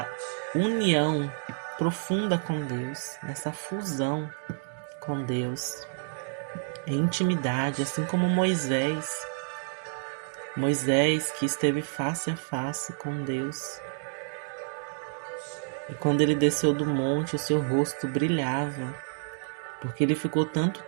união profunda com Deus, nessa fusão com Deus, em intimidade, assim como Moisés que esteve face a face com Deus. E quando ele desceu do monte, o seu rosto brilhava, porque ele ficou tanto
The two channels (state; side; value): silent; left; digital silence